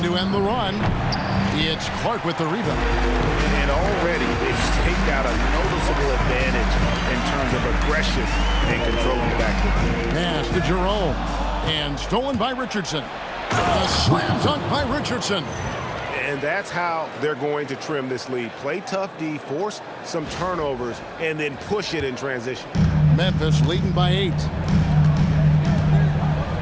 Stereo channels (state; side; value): identical; both; correlation 1.00